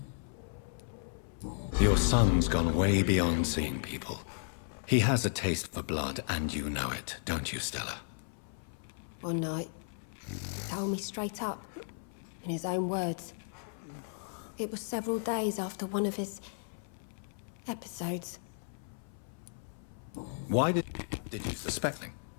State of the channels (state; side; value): silent; right; 55 dB below the other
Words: Your son's gone way beyond seeing people. He has a taste for blood, and you know it, don't you, Stella? One night, he told me straight up, in his own words. It was several days after one of his episodes. Why did you suspect him?